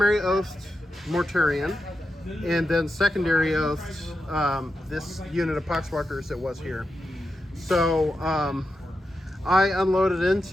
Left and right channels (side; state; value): both; normal; correlation 0.88